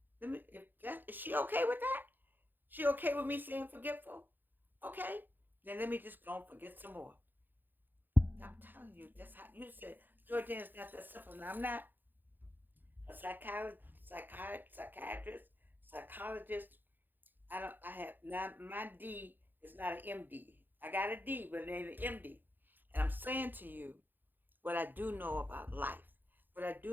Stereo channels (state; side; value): late; left; 0.090 ms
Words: Is she okay with that? She okay with me saying forgetful? Okay. Then let me just go and forget some more. I'm telling you, that's how you said Jordan's not that simple. Now I'm not a psychiatrist, psychologist. I don't. I have not. My D is not an MD. I got a D, but it ain't an MD. And I'm saying to you what I do know about life, what I